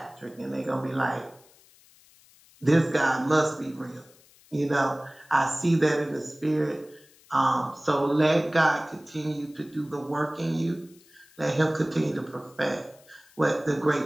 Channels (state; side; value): noise; left; hiss, 28 dB below the sound